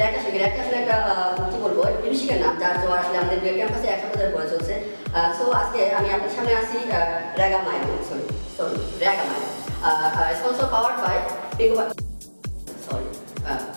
র্যাক আসলে একটা কি বলবো মিউজিকের নাম যার জন্য আসলে আমাদের ক্যাম্পাসে 100 পড়ে চলছে। সো আজকে আমি আপনার সামনে আসি raga mile sorry raga mile sponsor powered by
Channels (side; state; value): both; inverted; correlation -1.00